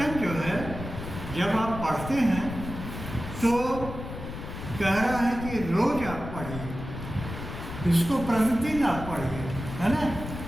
जो है जब आप पढ़ते हैं तो कह रहा है कि रोज आप पढ़िए, इसको प्रतिदिन आप पढ़िए, है ना।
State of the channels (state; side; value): noise; left; rumble, 9 dB below the sound